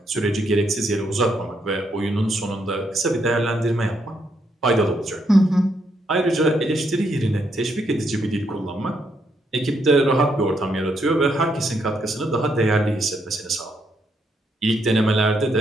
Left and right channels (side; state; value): both; normal; correlation 0.76